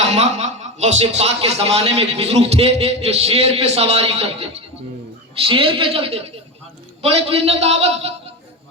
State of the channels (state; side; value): normal; both; correlation 0.20